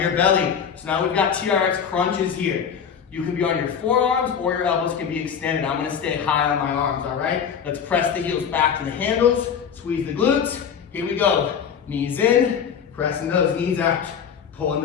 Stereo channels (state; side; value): quieter; right; 7.4 dB